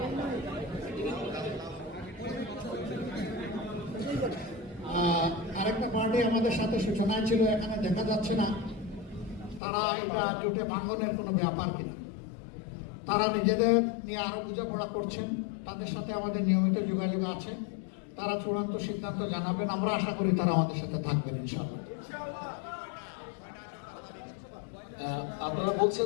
আরেকটা পার্টি আমাদের সাথে সূচনায় ছিল, এখানে দেখা যাচ্ছে না তারা এটা জোটে ভাঙনের কোনো ব্যাপার কিনা। তারা নিজেদের নিয়ে আরো বোঝাপড়া করছেন, তাদের সাথে আমাদের নিয়মিত যোগাযোগ আছে। তারা চূড়ান্ত সিদ্ধান্ত জানাবেন, আমরা আশা করি তারা আমাদের সাথে থাকবেন ইনশাআল্লাহ। আপনারা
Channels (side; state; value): right; drops out; at 9.6 s